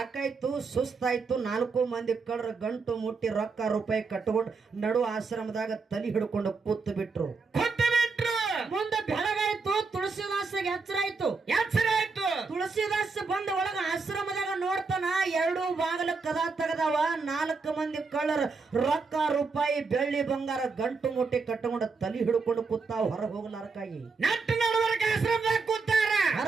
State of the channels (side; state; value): left; quieter; 4.5 dB